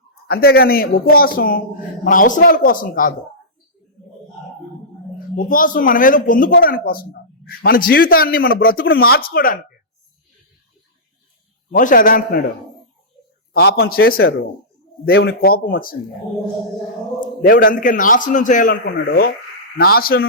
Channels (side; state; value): both; normal; correlation -0.16